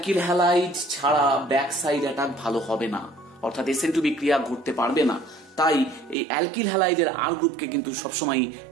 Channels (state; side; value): drops out; left; at 6.2 s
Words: হ্যালাইড ছাড়া ব্যাক সাইড অ্যাটাক ভালো হবে না, অর্থাৎ SN2 বিক্রিয়া ঘটতে পারবে না। তাই এই অ্যালকিল হ্যালাইডের R গ্রুপকে কিন্তু সবসময়